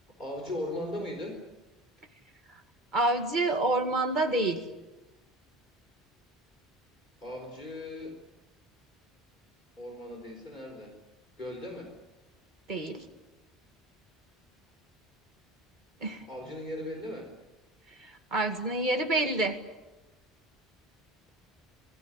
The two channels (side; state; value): both; normal; correlation 0.35